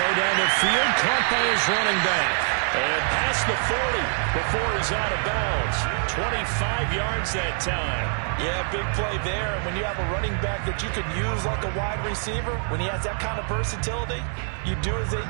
down the field, caught by his running back. And past the 40 before he's out of bounds. 25 yards that time. Yeah, big play there. And when you have a running back that you can use like a wide receiver, when he has that kind of versatility, you do as they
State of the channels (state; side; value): silent; left; 58 dB below the other